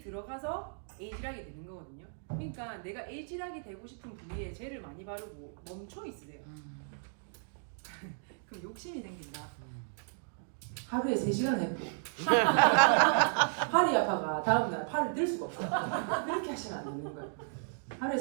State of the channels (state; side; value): silent; left; digital silence